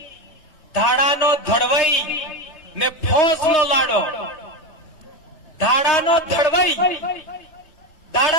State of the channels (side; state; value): right; late; 3.2 ms